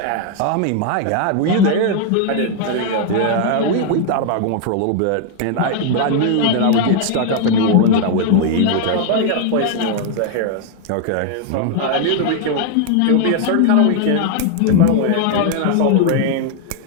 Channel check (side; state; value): both; different; correlation 0.00